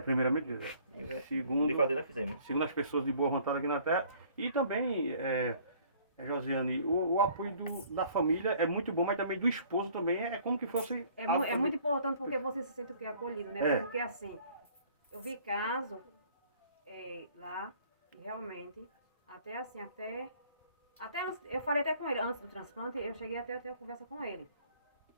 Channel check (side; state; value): both; inverted; correlation -0.56